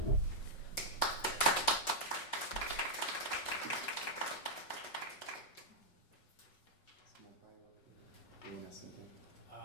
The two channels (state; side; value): late; right; 5.4 ms